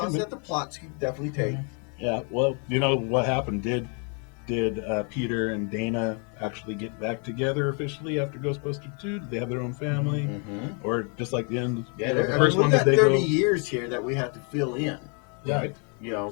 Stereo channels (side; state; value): right; quieter; 38.2 dB